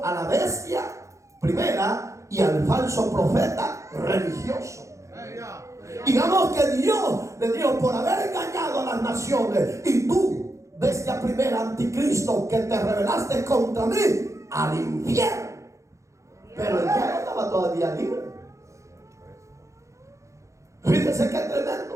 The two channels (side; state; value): left; late; 0.15 ms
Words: a la bestia primera y al falso profeta religioso. Digamos que Dios le dijo, por haber engañado a las naciones, y tú, bestia primera, anticristo, que te rebelaste contra mí, al infierno. Pero el diablo estaba todavía libre. Fíjense qué